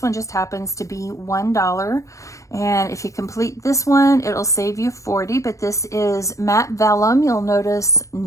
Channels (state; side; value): late; right; 0.15 ms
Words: one just happens to be $1. And if you complete this one, it'll save you 40, but this is matte vellum. You'll notice